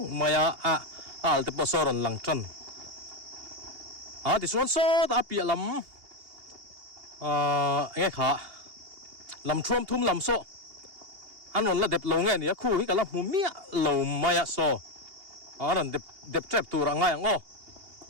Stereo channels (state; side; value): late; left; 2.8 ms